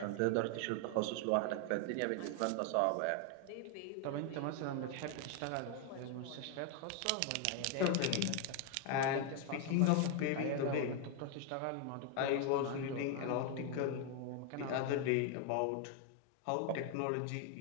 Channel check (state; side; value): different; both; correlation 0.01